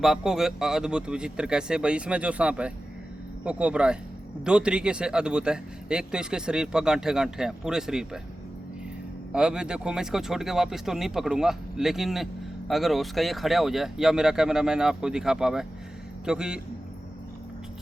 आपको अद्भुत विचित्र कैसे भाई, इसमें जो सांप है वो कोबरा है। दो तरीके से अद्भुत है। एक तो इसके शरीर पर गांठे गांठे हैं पूरे शरीर पर। अब देखो, मैं इसको छोड़ के वापस तो नहीं पकड़ूंगा, लेकिन अगर उसका ये खड़ा हो जाए या मेरा कैमरा मैन आपको दिखा पावे, क्योंकि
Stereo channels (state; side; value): normal; both; correlation 0.94